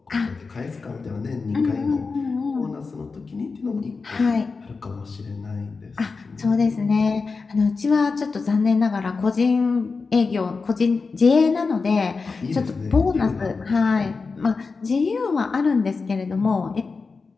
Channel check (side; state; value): right; quieter; 4.5 dB